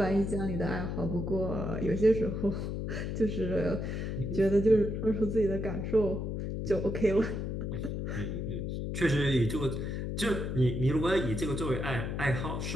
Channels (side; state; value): left; noise; hum, 3 dB below the sound